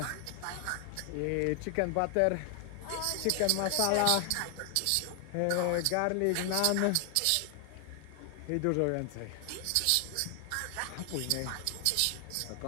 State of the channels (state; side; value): different; both; correlation 0.00